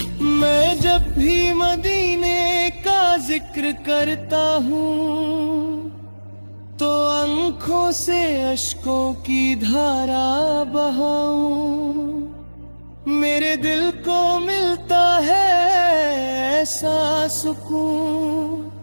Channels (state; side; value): inverted; both; correlation -1.00